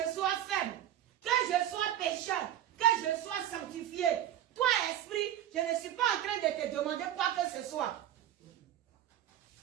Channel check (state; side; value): quieter; left; 11.7 dB